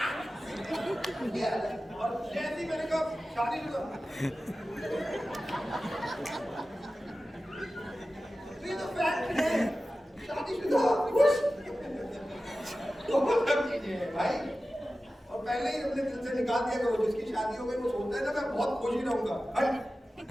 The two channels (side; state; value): both; normal; correlation 0.95